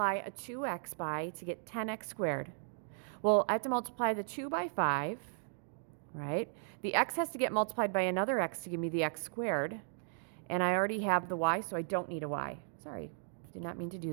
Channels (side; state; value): left; silent; digital silence